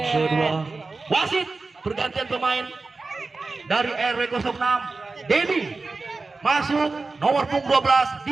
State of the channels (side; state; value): left; quieter; 3.8 dB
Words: kedua. Wasit pergantian pemain dari RW 06 Dedi masuk nomor punggung 12,